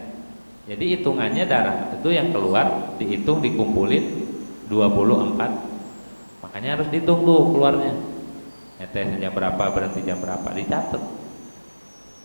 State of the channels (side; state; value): both; inverted; correlation -1.00